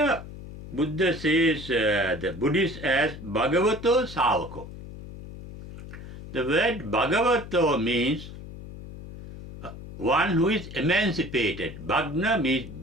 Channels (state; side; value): noise; left; hum, 13 dB below the sound